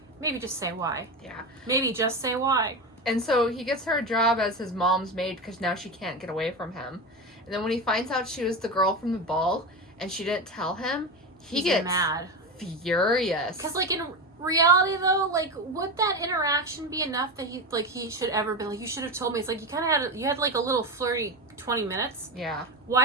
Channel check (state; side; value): normal; both; correlation 0.20